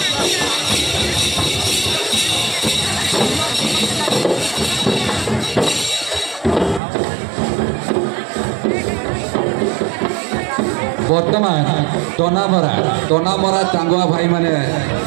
बर्तमान तनामरा चांगुआ भाई माने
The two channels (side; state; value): left; drops out; at 6.8 s